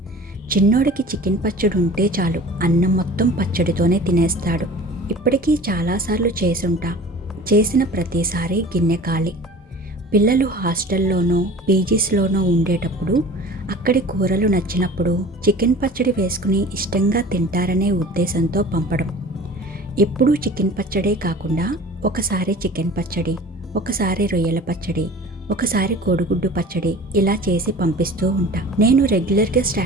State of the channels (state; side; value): normal; both; correlation 0.42